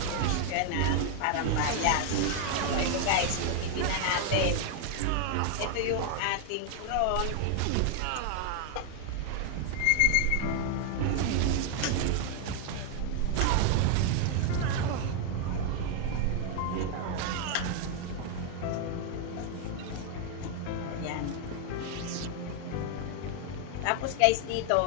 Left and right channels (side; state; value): both; different; correlation 0.00